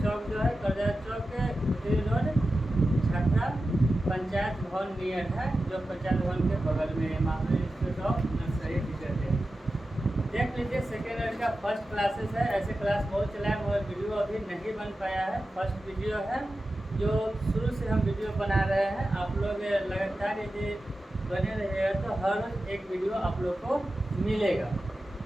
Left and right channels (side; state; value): both; normal; correlation 0.93